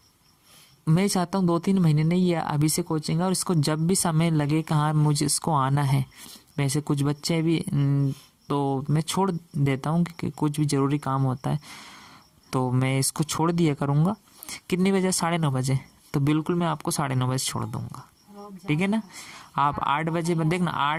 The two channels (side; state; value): both; identical; correlation 1.00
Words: मैं चाहता हूँ 2-3 महीने नहीं है अभी से कोचिंग, और इसको जब भी समय लगे कहाँ मुझे इसको आना है। वैसे कुछ बच्चे भी तो मैं छोड़ देता हूँ क्योंकि कुछ भी ज़रूरी काम होता है तो मैं इसको छोड़ दिया करूँगा। कितने बजे? 9:30 बजे। तो बिल्कुल मैं आपको 9:30 बजे छोड़ दूँगा, ठीक है ना। आप 8 बजे देखना,